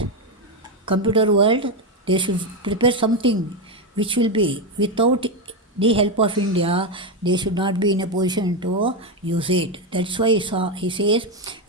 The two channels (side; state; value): both; normal; correlation 0.09